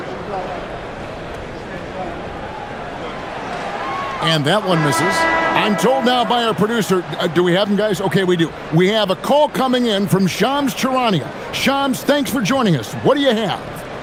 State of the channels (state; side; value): identical; both; correlation 1.00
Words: And that one misses. I'm told now by our producer, do we have them, guys? Okay, we do. We have a call coming in from Shams Charania. Shams, thanks for joining us. What do you have?